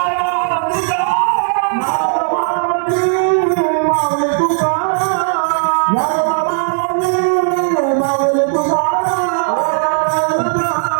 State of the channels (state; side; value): silent; left; 60 dB below the other